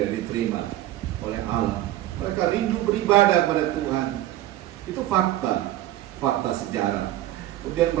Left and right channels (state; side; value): quieter; left; 14.5 dB